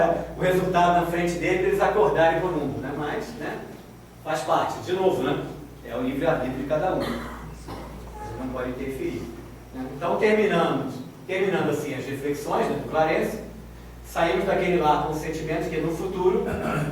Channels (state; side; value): identical; both; correlation 1.00